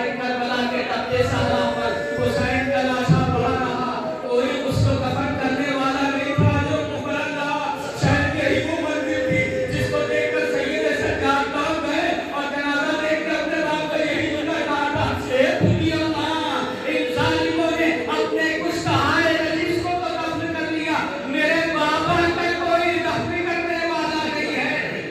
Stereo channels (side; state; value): both; identical; correlation 1.00